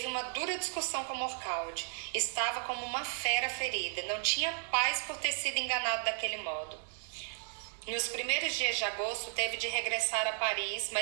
uma dura discussão com Morcaldi. Estava como uma fera ferida. Não tinha paz por ter sido enganado daquele modo. Nos primeiros dias de agosto, teve de regressar a Paris,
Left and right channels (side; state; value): left; silent; 55 dB below the other